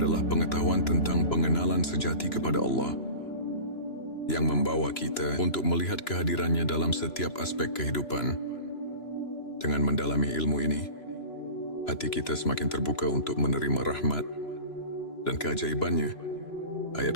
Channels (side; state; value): right; late; 3.0 ms